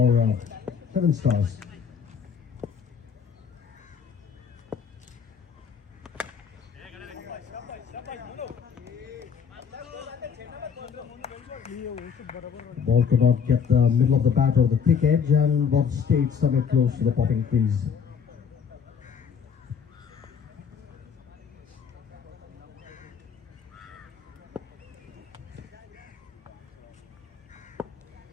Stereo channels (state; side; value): quieter; right; 6.9 dB